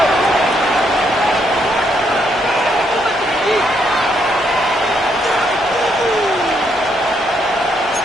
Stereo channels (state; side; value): normal; both; correlation 0.74